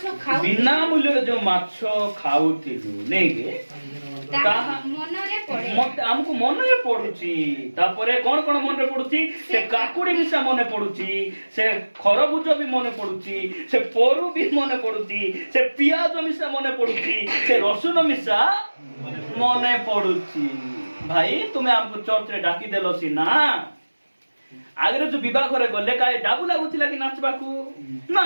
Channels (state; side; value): inverted; both; correlation -1.00